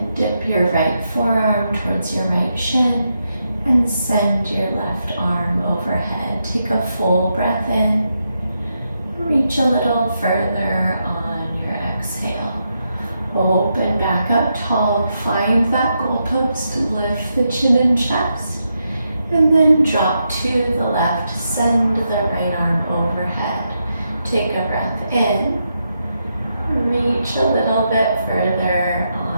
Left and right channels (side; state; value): both; inverted; correlation -0.83